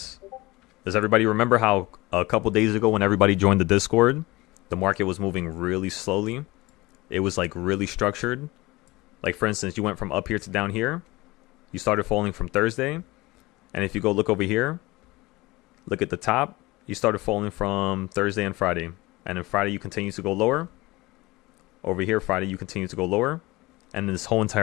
Does everybody remember how a couple days ago when everybody joined the Discord, the market was moving really slowly? It was like really structured. Like for instance, you went from up here to down here. You started falling from Thursday. And if you go look over here, look at the top, you started falling from Thursday and Friday. And then Friday you continue to go lower. Over here, Friday you continue to go lower. And this whole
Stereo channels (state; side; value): quieter; right; 21.2 dB